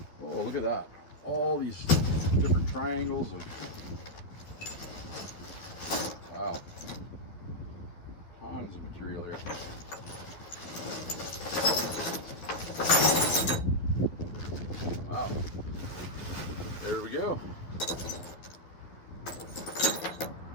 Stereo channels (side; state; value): right; late; 12 ms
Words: Oh, look at that. All these different triangles of, wow, tons of material here. Wow, there we go.